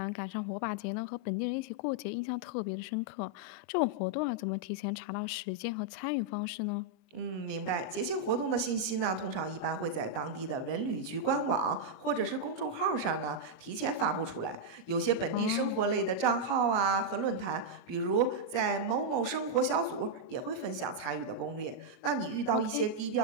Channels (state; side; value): late; right; 21 ms